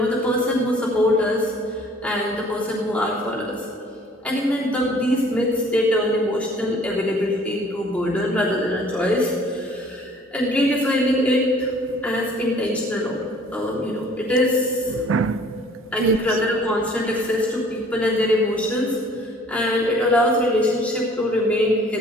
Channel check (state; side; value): normal; both; correlation 0.54